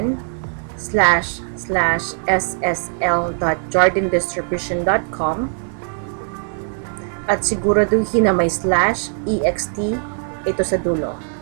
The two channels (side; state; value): left; silent; 66 dB below the other